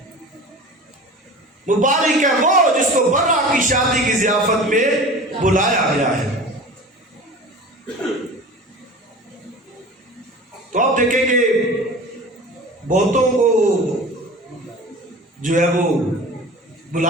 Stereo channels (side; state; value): both; normal; correlation 0.37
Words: مبارک ہے وہ جس کو برا کی شادی کی ضیافت میں بلایا گیا ہے. تو آپ دیکھیں کہ بہتوں کو جو ہے وہ